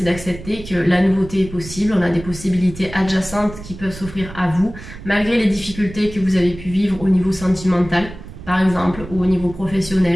d'accepter que la nouveauté est possible. On a des possibilités adjacentes qui peuvent s'offrir à vous, malgré les difficultés que vous avez pu vivre au niveau sentimental, par exemple, ou au niveau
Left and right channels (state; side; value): noise; right; rumble, 14 dB below the sound